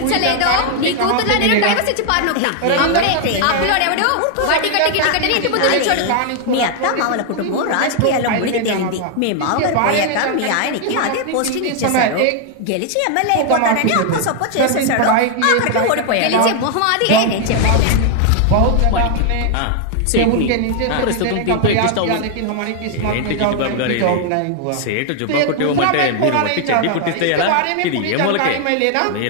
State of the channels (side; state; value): both; different; correlation 0.00